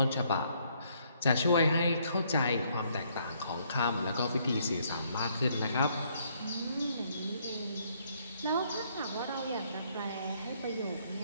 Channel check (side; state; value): both; inverted; correlation -0.68